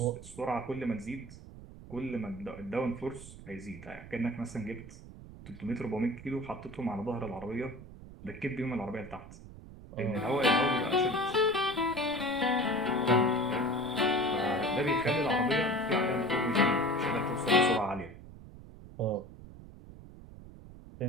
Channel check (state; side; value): noise; right; rumble, 16 dB below the sound